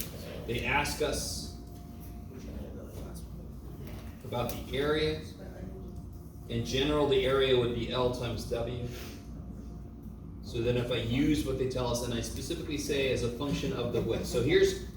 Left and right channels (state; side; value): identical; both; correlation 1.00